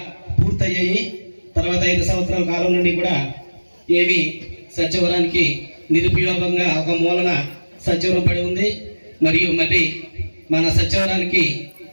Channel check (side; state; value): both; inverted; correlation -1.00